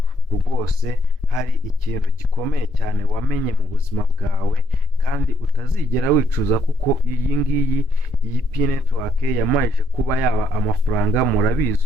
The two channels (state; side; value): normal; both; correlation 0.71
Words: rwose hari ikintu gikomeye cyane wamenye mu buzima bwawe kandi utazigera wicuza, kuko iyi P network yamajije kuba yaba amafaranga.